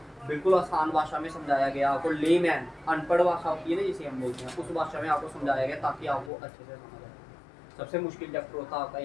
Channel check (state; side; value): drops out; right; at 6.3 s